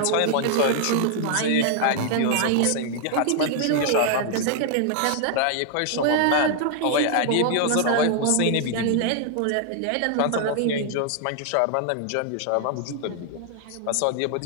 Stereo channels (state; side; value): different; both; correlation 0.00